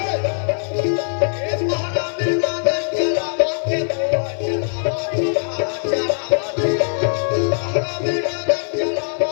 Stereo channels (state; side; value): silent; right; 56 dB below the other